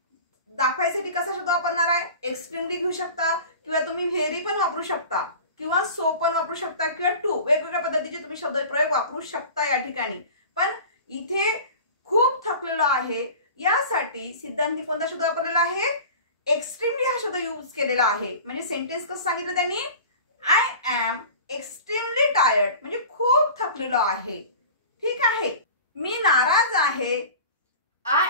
दाखवायसाठी कसा शब्द वापरणार आहे? एक्स्ट्रीमली घेऊ शकता किंवा तुम्ही व्हेरी पण वापरू शकता किंवा सो पण वापरू शकता किंवा टू, वेगवेगळ्या पद्धतीचे तुम्ही शब्दप्रयोग वापरू शकता या ठिकाणी. पण इथे खूप थकलेलो आहे यासाठी सिद्धांतने कोणता शब्द वापरलेला आहे? एक्स्ट्रीमली हा शब्द यूज केलेला आहे. म्हणजे सेंटेन्स कसं सांगितलं त्यांनी? I am extremely tired. म्हणजे खूप थकलेलो आहे. ठीक आहे. मी नाराज आहे. I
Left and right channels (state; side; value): inverted; both; correlation -0.38